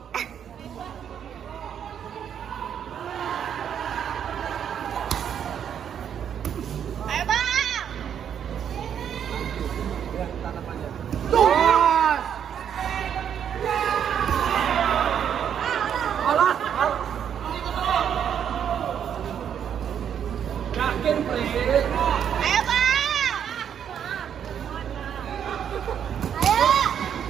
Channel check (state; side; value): quieter; left; 8.7 dB